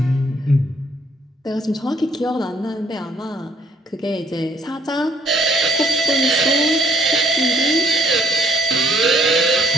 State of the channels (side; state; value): both; normal; correlation 0.65